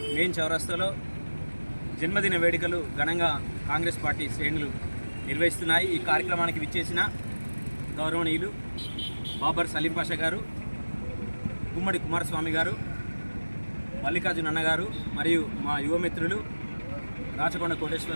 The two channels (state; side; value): inverted; both; correlation -1.00